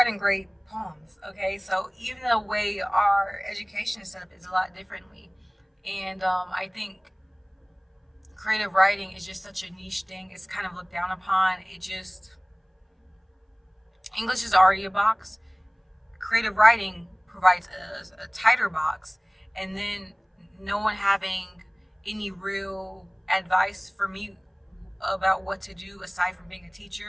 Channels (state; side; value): identical; both; correlation 1.00